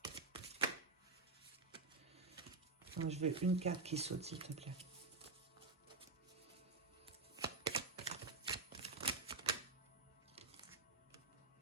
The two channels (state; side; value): quieter; left; 3.8 dB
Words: Non, je veux une carte qui saute, s'il te plaît.